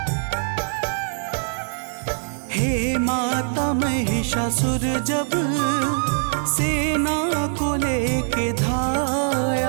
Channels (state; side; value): silent; left; 64 dB below the other